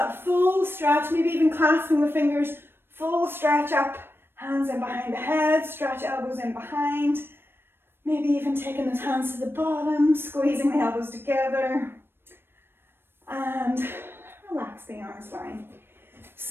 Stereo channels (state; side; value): late; left; 0.11 ms